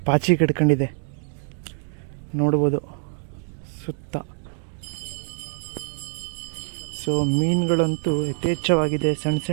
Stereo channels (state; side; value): silent; left; 62 dB below the other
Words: ಪಾಚಿ ಕಟ್ಕೊಂಡಿದೆ, ನೋಡ್ಬೋದು ಸುತ್ತ. ಸೊ ಮೀನುಗಳಂತೂ ಯಥೇಚ್ಛವಾಗಿದೆ, ಸಣ್ಣ